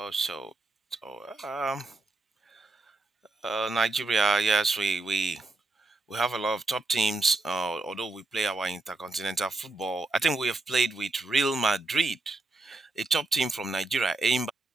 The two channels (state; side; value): quieter; left; 3.2 dB